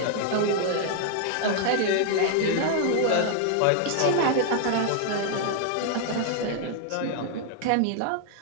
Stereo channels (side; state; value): both; different; correlation 0.00